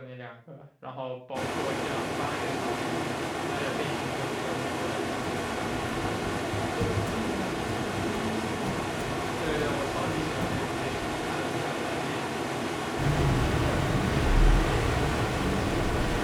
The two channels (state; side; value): identical; both; correlation 1.00